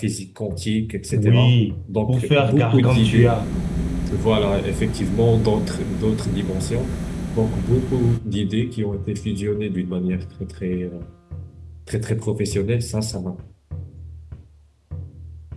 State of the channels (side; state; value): both; identical; correlation 1.00